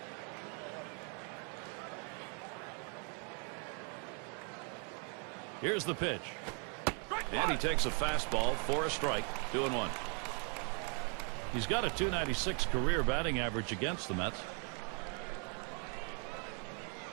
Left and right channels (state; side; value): quieter; left; 38.5 dB